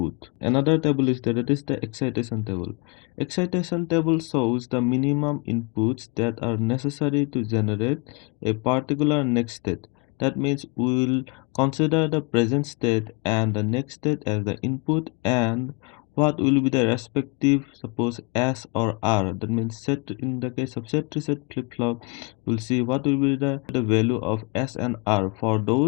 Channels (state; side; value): quieter; right; 30.4 dB